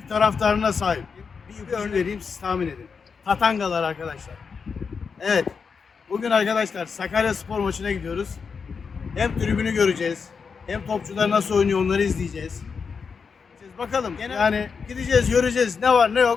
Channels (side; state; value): right; quieter; 5.6 dB